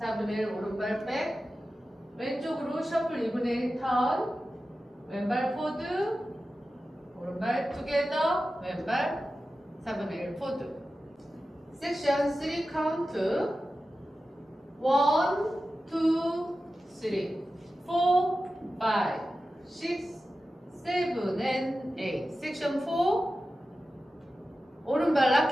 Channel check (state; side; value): normal; both; correlation 0.93